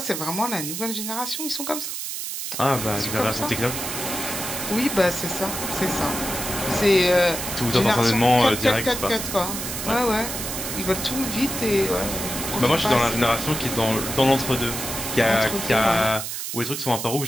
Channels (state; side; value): noise; right; hiss, 5 dB below the sound